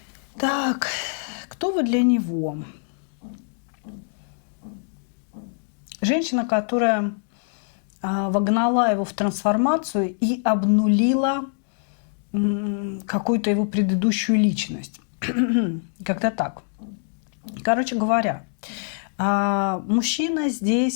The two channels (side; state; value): right; silent; 61 dB below the other